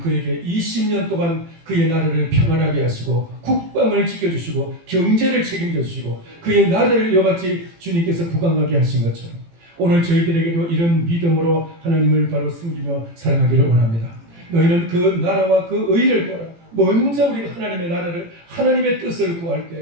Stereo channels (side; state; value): left; late; 18 ms